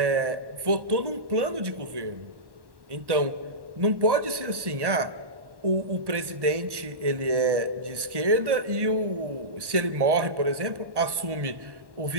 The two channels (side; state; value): left; late; 1.1 ms